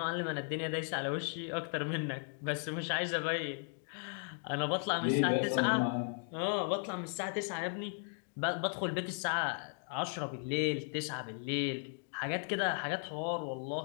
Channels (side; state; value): right; silent; 54 dB below the other